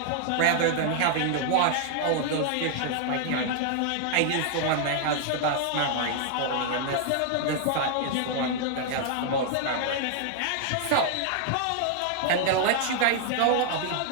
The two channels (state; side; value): different; both; correlation 0.00